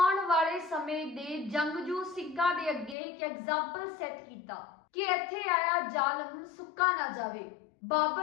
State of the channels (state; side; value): drops out; right; at 3.0 s